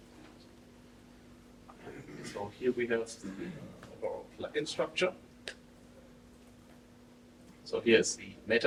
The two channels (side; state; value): both; identical; correlation 1.00